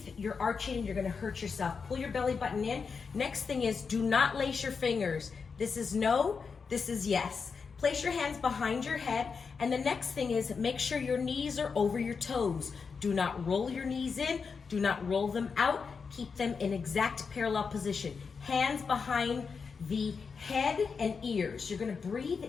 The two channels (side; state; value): right; quieter; 5.4 dB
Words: you're arching and you're gonna hurt yourself. Pull your belly button in. Next thing is, do not lace your fingers. This is no, this is yes. Place your hands behind your head, and the next thing is make sure your knees are over your toes. Do not roll your knees in, do not roll them out. Keep them in exact parallel position. Hands behind the head and ears. You're gonna breathe